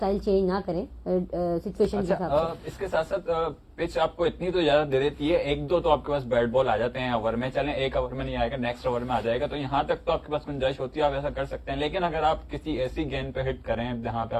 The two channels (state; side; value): identical; both; correlation 1.00